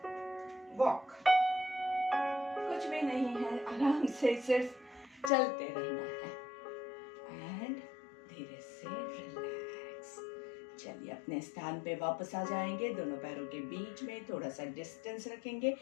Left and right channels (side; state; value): right; drops out; at 5.3 s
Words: वॉक। कुछ भी नहीं है, आराम से सिर्फ चलते रहना है एंड धीरे से रिलैक्स। चलिए अपने स्थान पे वापस आ जाएंगे। दोनों पैरों के बीच में थोड़ा सा डिस्टेंस रखेंगे,